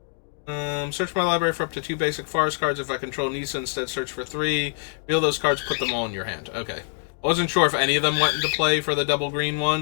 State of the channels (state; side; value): silent; right; digital silence